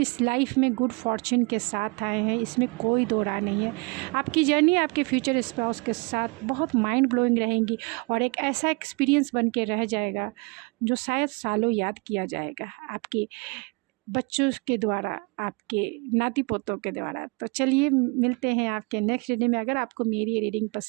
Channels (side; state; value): left; quieter; 30.6 dB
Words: इस लाइफ में गुड फॉर्च्यून के साथ आए हैं, इसमें कोई दो राय नहीं है। आपकी जर्नी आपके फ्यूचर स्पाउस के साथ बहुत माइंड ब्लोइंग रहेंगी, और एक ऐसा एक्सपीरियंस बन के रह जाएगा जो शायद सालों याद किया जाएगा आपके बच्चों के द्वारा, आपके नाती पोतों के द्वारा। तो चलिए मिलते हैं आपके नेक्स्ट रीडिंग में। अगर आपको मेरी रीडिंग